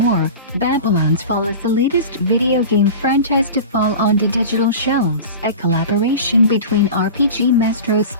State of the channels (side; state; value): both; inverted; correlation -0.33